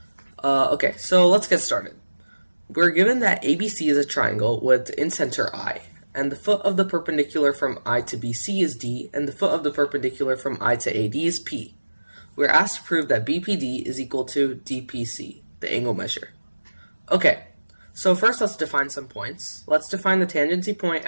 Okay, so let's get started. We're given that ABC is a triangle with in-center I, and the foot of the perpendicular from I to BC is D, and the foot of the perpendicular from I to AD is P. We're asked to prove that BPD is equal to DPC, the angle measure. Okay. So first let's define some points. Let's define the tangency point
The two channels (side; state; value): both; inverted; correlation -1.00